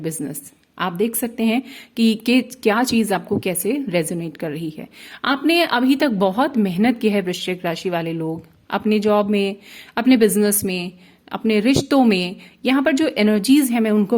बिजनेस। आप देख सकते हैं कि क्या चीज़ आपको कैसे रेजोनेट कर रही है। आपने अभी तक बहुत मेहनत की है वृश्चिक राशि वाले लोग, अपने जॉब में, अपने बिजनेस में, अपने रिश्तों में। यहाँ पर जो एनर्जीज है मैं उनको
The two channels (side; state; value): both; identical; correlation 1.00